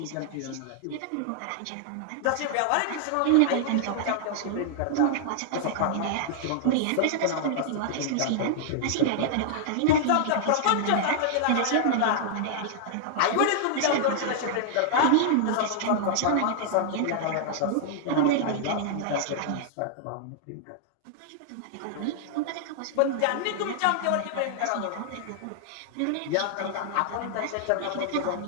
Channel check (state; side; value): different; both; correlation -0.01